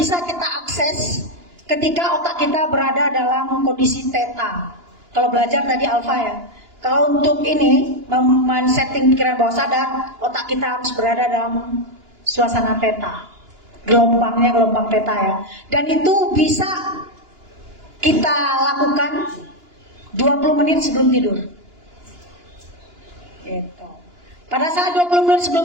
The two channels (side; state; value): left; late; 2.9 ms